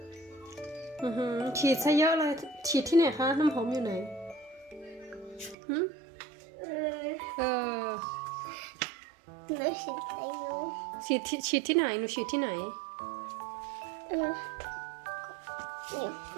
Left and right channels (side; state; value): left; drops out; at 5.6 s